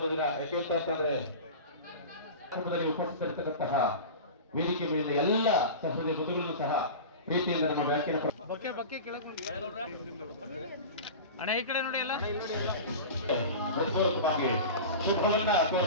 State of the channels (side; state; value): both; inverted; correlation -0.31